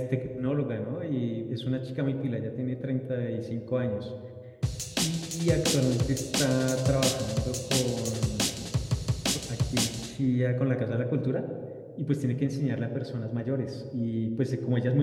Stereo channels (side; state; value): both; identical; correlation 1.00